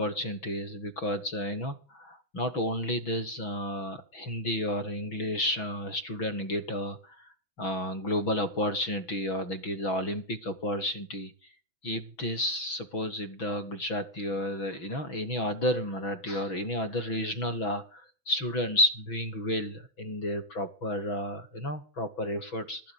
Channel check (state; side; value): late; right; 6.1 ms